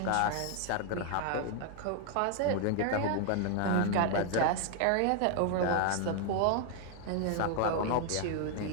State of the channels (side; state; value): both; different; correlation 0.00